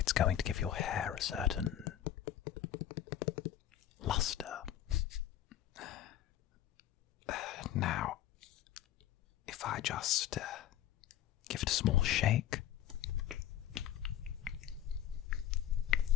going to give your hair a certain luster. Now, if I just give it a small shake.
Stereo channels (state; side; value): quieter; right; 11.5 dB